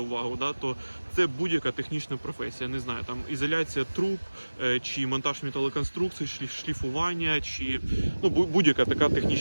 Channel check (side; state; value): both; inverted; correlation -1.00